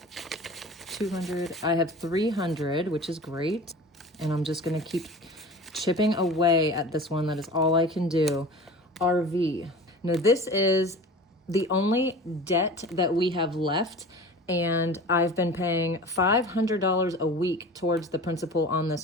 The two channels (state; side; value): normal; both; correlation 0.38